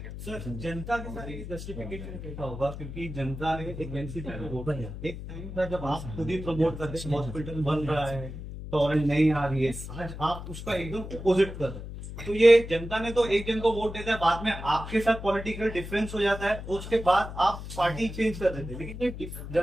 जनता के साथ एक जस्टिफिकेशन कैसा होगा, क्योंकि जनता ने एक एक टाइम था जब आप खुद ही प्रमोट करते हैं हॉस्पिटल बन रहा है, टॉरेंट नहीं आ रही है, आज आप उसका एकदम अपोजिट कर रहे हैं। तो ये जनता ने तो एक जन को वोट देता है, बाद में आपके साथ पॉलिटिकल डिफरेंस हो जाता है, उसके बाद आप पार्टी चेंज कर देते हैं, लेकिन ये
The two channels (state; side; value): noise; left; hum, 9 dB below the sound